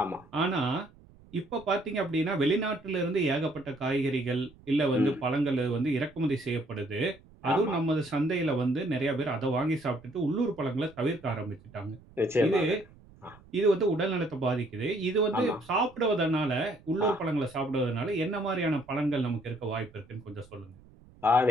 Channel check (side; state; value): right; noise; rumble, 25 dB below the sound